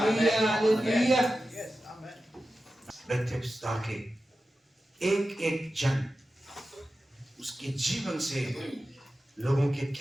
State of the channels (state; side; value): normal; both; correlation 0.93